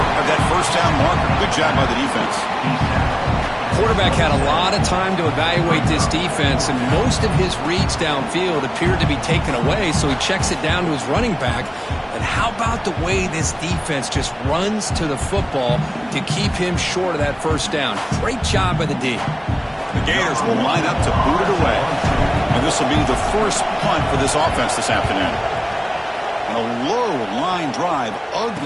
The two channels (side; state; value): both; identical; correlation 1.00